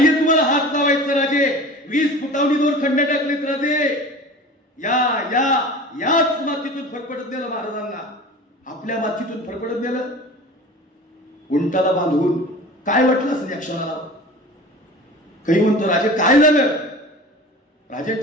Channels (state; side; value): normal; both; correlation 0.38